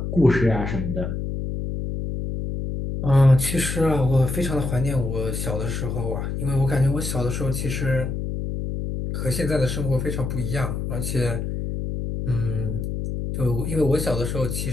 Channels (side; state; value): left; noise; hum, 3 dB below the sound